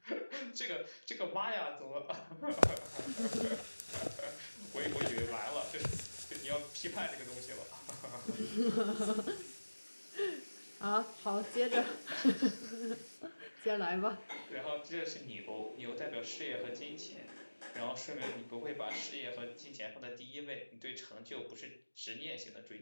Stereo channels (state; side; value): inverted; both; correlation -1.00